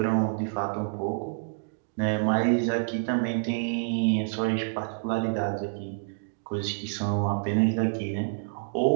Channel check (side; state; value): left; silent; digital silence